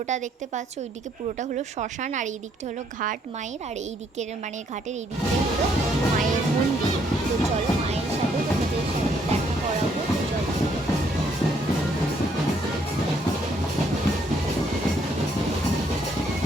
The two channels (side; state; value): both; normal; correlation 0.69